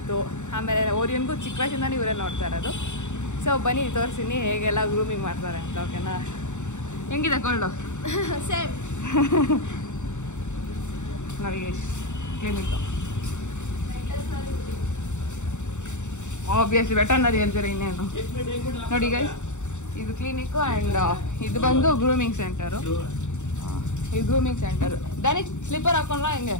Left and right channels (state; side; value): late; right; 0.84 ms